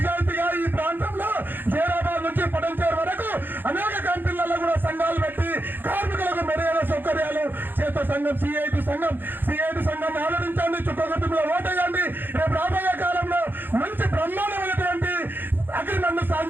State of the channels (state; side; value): late; left; 0.094 ms